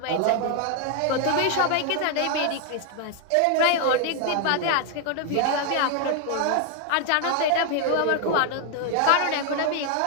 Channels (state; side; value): different; both; correlation 0.00